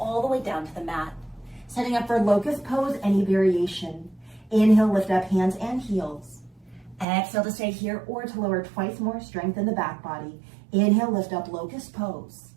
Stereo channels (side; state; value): left; drops out; at 7.1 s